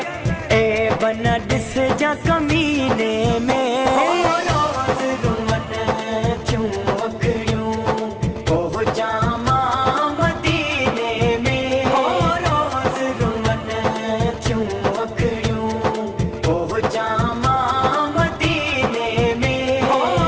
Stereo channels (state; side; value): identical; both; correlation 1.00